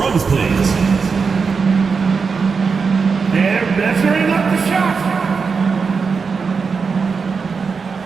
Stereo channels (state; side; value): quieter; left; 5.2 dB